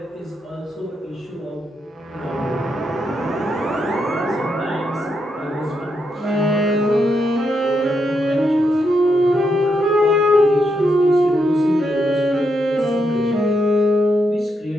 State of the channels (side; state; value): both; normal; correlation 0.81